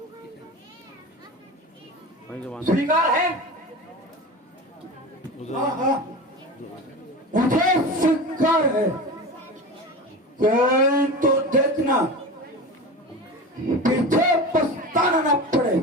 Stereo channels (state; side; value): normal; both; correlation 0.29